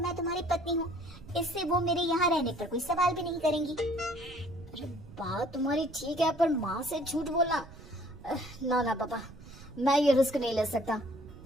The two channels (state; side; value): noise; right; rumble, 18 dB below the sound